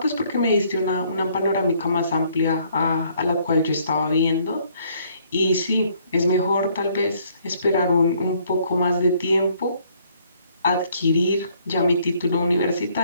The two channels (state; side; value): inverted; both; correlation -0.65